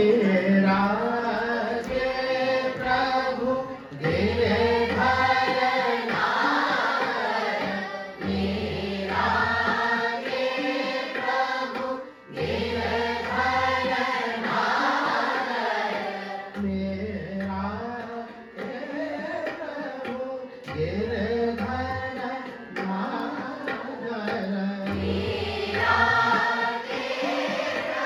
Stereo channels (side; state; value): both; identical; correlation 1.00